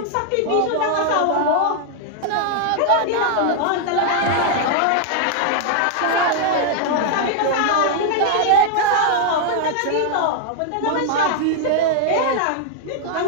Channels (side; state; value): both; different; correlation 0.00